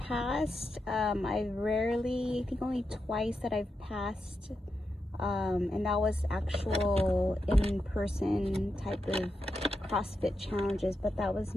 I think only twice that I've passed, and that was actual in-person type of CrossFit challenges, but that was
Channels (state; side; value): normal; both; correlation 0.86